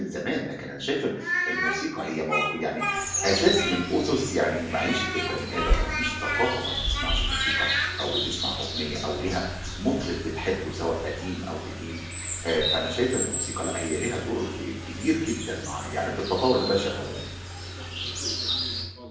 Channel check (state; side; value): identical; both; correlation 1.00